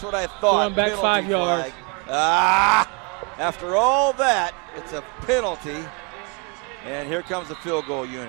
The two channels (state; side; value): quieter; left; 30.5 dB